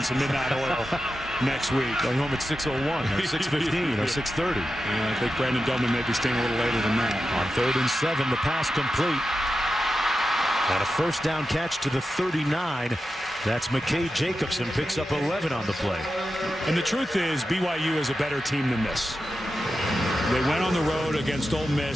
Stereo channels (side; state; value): both; normal; correlation 0.91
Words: some midnight oil next week. Going home at 6:01 or 6:15 or 6:30. Yeah, I think Brandon Doman may be staying a little later than that. On 3rd and 7, the pass complete. And a first down catch to the 39. That's McKay Jacobson, picks up 11 on the play. And the truth is, BYU is a better team than this. They went on the road against Ole